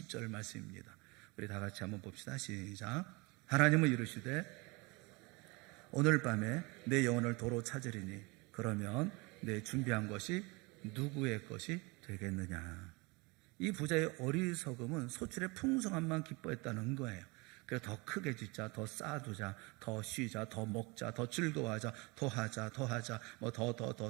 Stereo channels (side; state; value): left; quieter; 26.7 dB